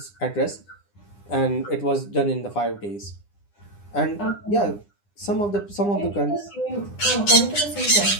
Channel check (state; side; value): late; right; 9.9 ms